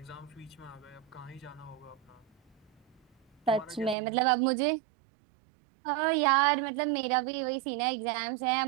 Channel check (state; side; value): drops out; left; at 4.0 s